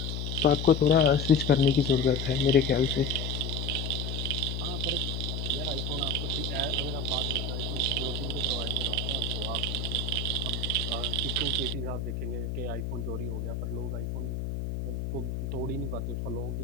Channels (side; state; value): left; noise; hum, 3 dB below the sound